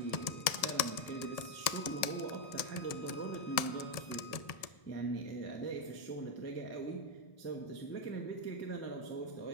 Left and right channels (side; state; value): right; late; 1.7 ms